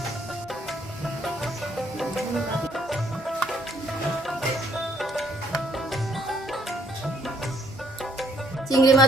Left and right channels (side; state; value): both; normal; correlation 0.67